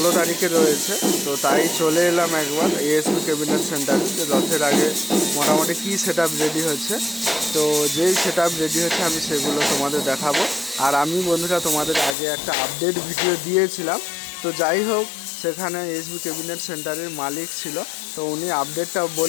তারিখে রয়েছে, তো তাই চলে এলাম একবার এএসবি ক্যাবিনেট সেন্টারে যে রথের আগে মোটামুটি কী সেট আপ রেডি হচ্ছে। তো যেই সেট আপ রেডি হচ্ছে আমি সেগুলো তোমাদের দেখাবো। আর আমি বন্ধুরা তোমাদের আগে একটা আপডেট ভিডিও দিয়েছিলাম। তো যাই হোক, সেখানে এসবি ক্যাবিনেট সেন্টারের মালিক ছিল, তো উনি আপডেটটা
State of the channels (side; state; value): right; drops out; at 12.2 s